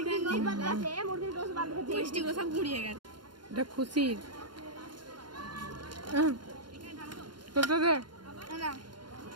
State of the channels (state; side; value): late; left; 0.71 ms